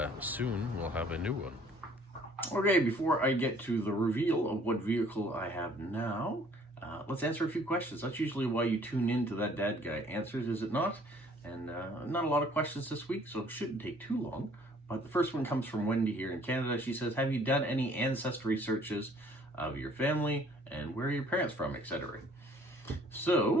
soon we'll have a new one. Okay, before I get to the reveal of what vehicle I have now, let's answer a few questions. That's usually why you tune into That Dad Guy Answers, is it not? And not a lot of questions this week, so it shouldn't take too long. But the first one comes from Wendy here in Canada. She says, have you done any ancestry searches of your family and where are your parents from, etc.?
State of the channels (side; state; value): both; normal; correlation 0.57